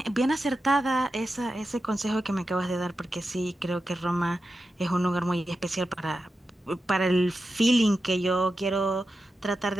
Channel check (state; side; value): normal; both; correlation 0.90